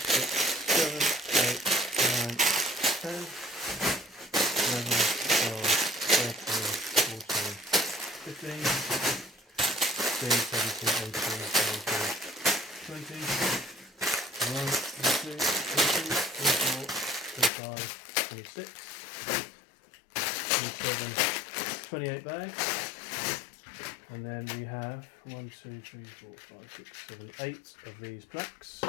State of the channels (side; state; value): right; drops out; at 17.5 s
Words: 7, 8, 9, 10, 11, 12, 13, 14, 15, 16, 17, 18, 19, 28 bags. And then we have 1, 2, 3, 4, 5, 6, 7, 8 of these plaques.